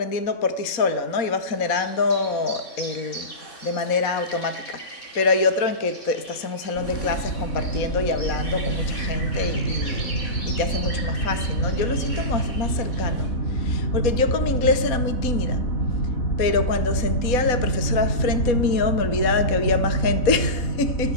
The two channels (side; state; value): right; late; 4.1 ms